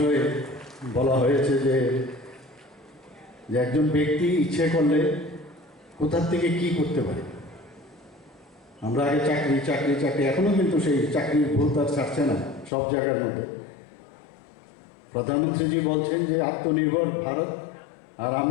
বলা হয়েছে যে একজন ব্যক্তি ইচ্ছে করলে কোথা থেকে কি করতে পারে। আমরা আগে চাকরি এখনো কিন্তু সেই চাকরির ভুল তার ছাড়ছে না সব জায়গার মধ্যে। প্রধানমন্ত্রীজি বলছেন যে আত্মনির্ভর ভারত, আর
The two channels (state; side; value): drops out; right; at 12.7 s